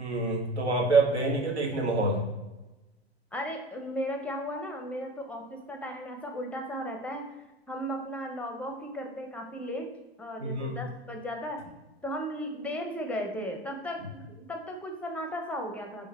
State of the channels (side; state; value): both; normal; correlation 0.37